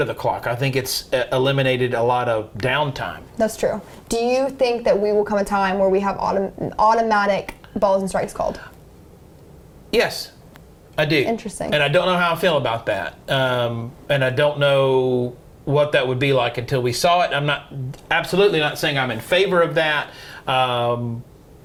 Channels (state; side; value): identical; both; correlation 1.00